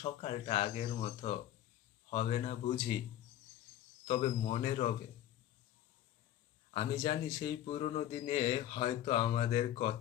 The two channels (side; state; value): right; quieter; 12.2 dB